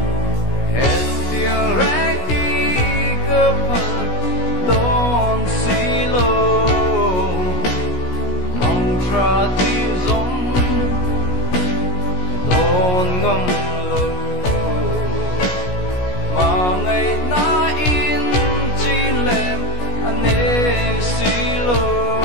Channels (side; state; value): right; late; 17 ms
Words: hết tiếng regi cơ phật don't see low mong tra tin giống don't ngâm lâu mà ngày na in chi lem anh ấy xí lô